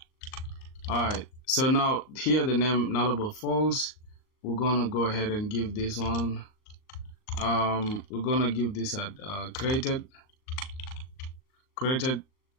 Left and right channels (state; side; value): late; right; 39 ms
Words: Alright, so now here the name nullable false. We're gonna go ahead and give this one, we're gonna give this at creation